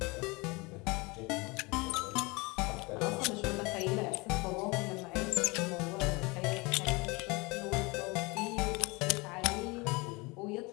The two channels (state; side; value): quieter; right; 25.9 dB